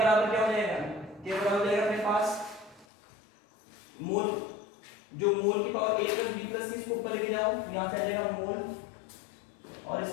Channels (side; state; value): right; drops out; at 2.9 s